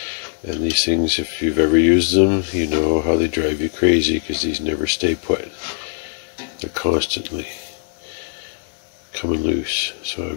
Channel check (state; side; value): silent; right; 65 dB below the other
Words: and these things, if you've ever used them, you know how they drive you crazy because these never stay put. They're constantly coming loose. So